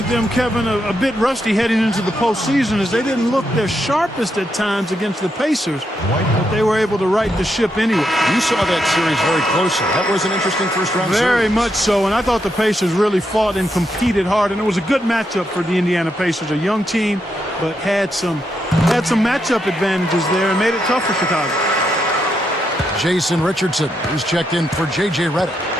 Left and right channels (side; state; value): both; normal; correlation 0.81